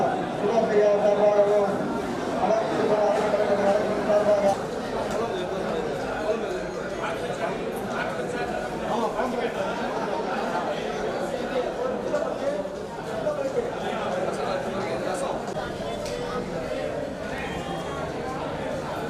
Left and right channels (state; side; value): identical; both; correlation 1.00